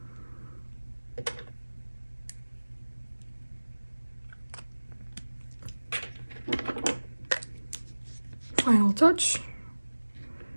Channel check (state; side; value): inverted; both; correlation -1.00